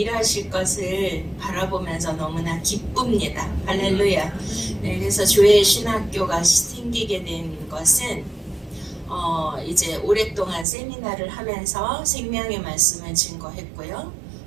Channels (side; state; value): left; drops out; at 10.7 s